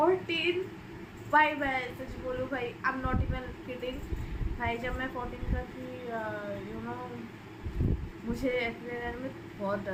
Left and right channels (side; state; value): both; identical; correlation 1.00